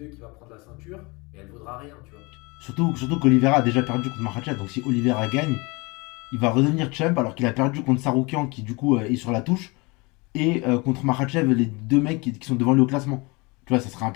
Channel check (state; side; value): quieter; right; 26.5 dB